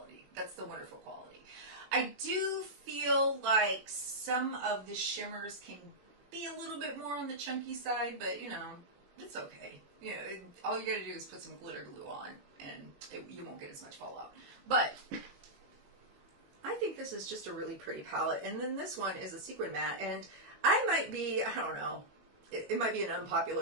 That's the wonderful quality. I do feel like some of the shimmers can be a little bit more on the chunky side, but you know, it's okay. You know, all you gotta do is put some glitter glue on and you won't get as much fallout. But I think this is just a really pretty palette. And then this one is a sequin matte, and I might be, I don't know, it might be an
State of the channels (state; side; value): late; left; 21 ms